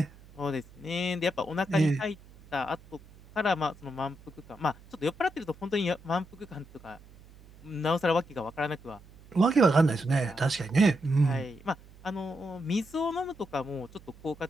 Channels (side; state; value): right; noise; hum, 23 dB below the sound